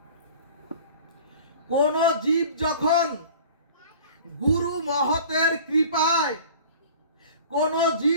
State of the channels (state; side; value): inverted; both; correlation -0.44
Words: কোন জীব যখন গুরু মহতের কৃপায়, কোন